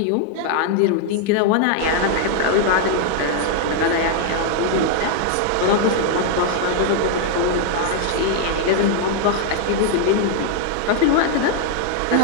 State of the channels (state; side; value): different; both; correlation 0.00